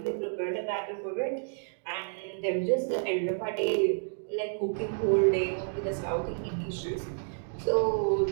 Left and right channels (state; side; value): silent; left; digital silence